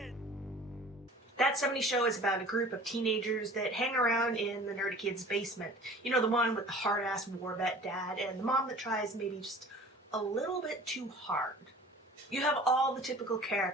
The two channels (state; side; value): normal; both; correlation 0.45